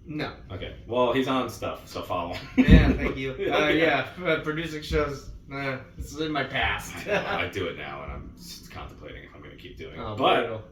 No. Okay. Well, he's on stuff, so follow him. Yeah, thank you. Producing shows, it's in my past. I do it now, and I'm just contemplating if I'm going to keep doing it. Oh, but brutal.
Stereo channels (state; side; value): identical; both; correlation 1.00